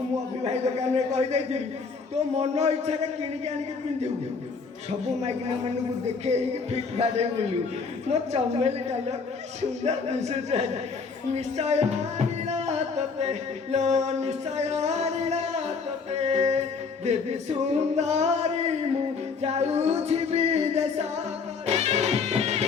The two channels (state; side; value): quieter; right; 5.0 dB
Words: ମୁଁ ଅଭିଭାଇ ଦୋକାନରେ କହିଦେଇଥିଲି ତୋ ମନ ଇଚ୍ଛାରେ କିଣିକି ଆଣିକି ପିନ୍ଧିବୁ ସବୁ ମାଇକିନା ମାନଙ୍କୁ ଦେଖେଇକି ଫିଟ୍ ବାଡ଼େଇ ବୁଲିବୁ ମୋ ଚମେଲି କଲ ସୁନ୍ଦର ଦିଶୁଛୁ ନିଶ୍ଚୟ ଆଣିଲା ତତେ ଲୋ ନିଶ୍ଚୟ ଆଣିଲା ତତେ ଦେବୀ ସୁନ୍ଦରୀ ମୁଁ ଯାଉଛି ବିଦେଶ